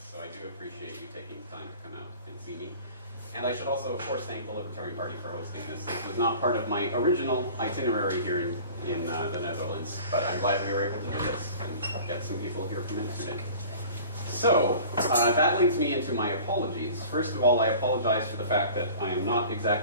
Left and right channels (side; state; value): both; inverted; correlation -0.44